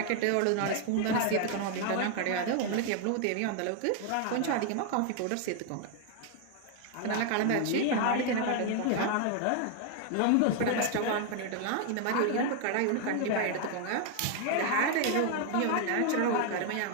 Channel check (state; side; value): different; both; correlation 0.00